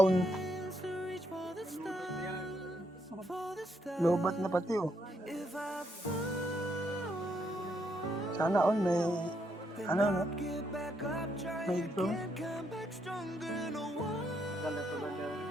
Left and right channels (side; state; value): both; normal; correlation 0.76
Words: Hands to reach for the stars, for the stars. Lobat na pati oh. If I fall, Sana all may then no? I'll get back up, try May drone. again, come back stronger. No one,